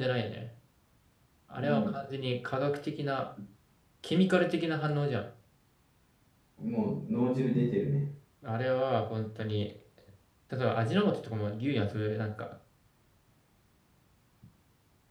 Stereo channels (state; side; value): identical; both; correlation 1.00